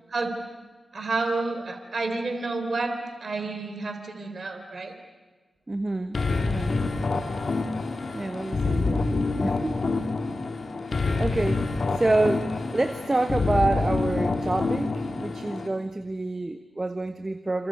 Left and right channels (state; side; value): normal; both; correlation 0.92